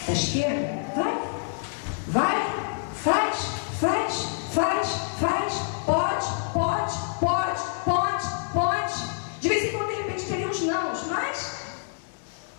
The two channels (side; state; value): right; silent; digital silence